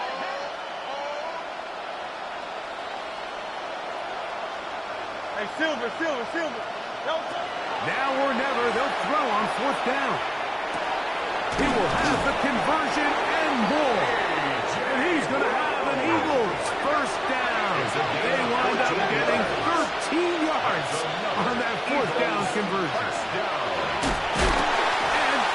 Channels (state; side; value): identical; both; correlation 1.00